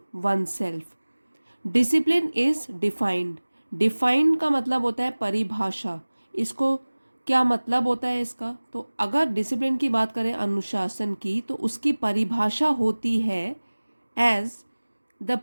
oneself. Discipline is defined. Define का मतलब होता है परिभाषा। इसको क्या मतलब होता है इसका? तो अगर डिसिप्लिन की बात करें, अनुशासन की, तो उसकी परिभाषा होती है as the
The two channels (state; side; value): inverted; both; correlation -1.00